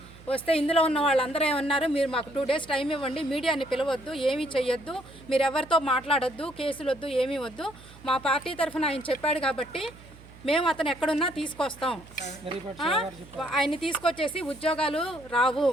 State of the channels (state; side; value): noise; right; hum, 21 dB below the sound